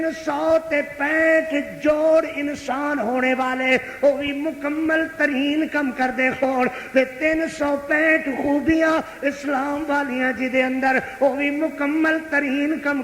جوڑ انسان ہونے والے وہ بھی مکمل ترین کم کر دے ہون تے 365 خوبیاں اسلام والیاں جی دے اندر وہ بھی مکمل ترین کم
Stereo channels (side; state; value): both; identical; correlation 1.00